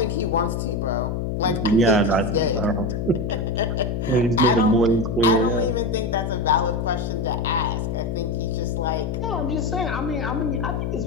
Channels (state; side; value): noise; left; hum, 1 dB below the sound